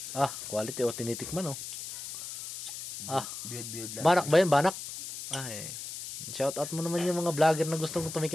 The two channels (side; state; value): left; noise; hiss, 9 dB below the sound